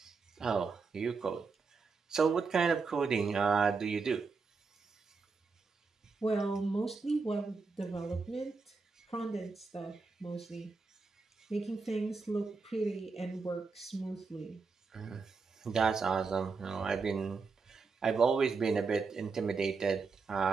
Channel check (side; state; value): left; quieter; 4.6 dB